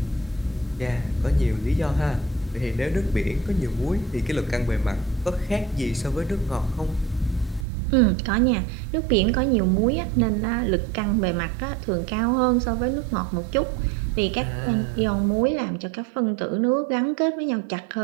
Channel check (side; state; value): left; drops out; at 7.7 s